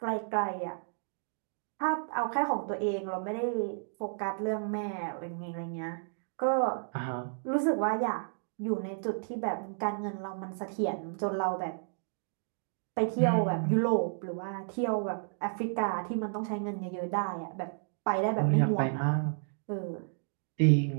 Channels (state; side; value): silent; left; digital silence